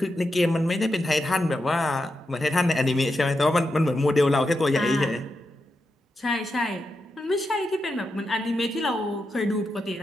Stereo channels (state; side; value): normal; both; correlation 0.87